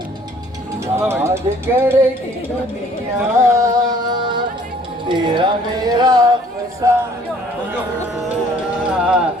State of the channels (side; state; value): both; normal; correlation 0.57